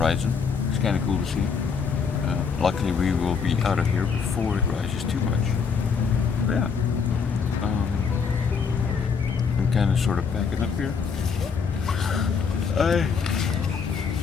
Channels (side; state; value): right; quieter; 5.8 dB